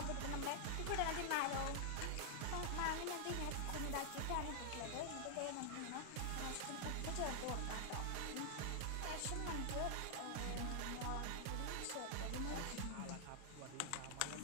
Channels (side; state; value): both; different; correlation 0.00